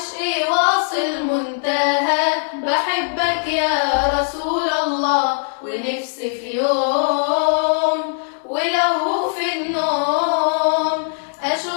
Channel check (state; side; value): silent; right; digital silence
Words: في واصل منتهى. بحبك يا رسول الله، ونفسي في يوم ولو في النوم